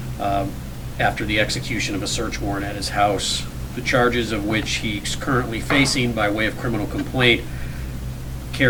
after the execution of a search warrant at his house. The charges of which he's currently facing by way of criminal complaint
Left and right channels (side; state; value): both; identical; correlation 1.00